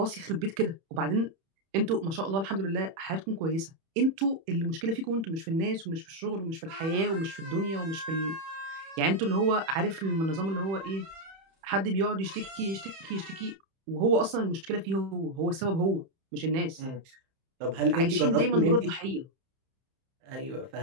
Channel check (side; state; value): left; late; 31 ms